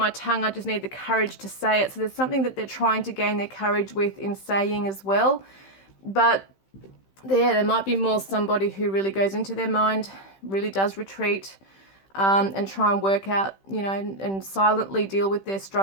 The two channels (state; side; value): late; right; 15 ms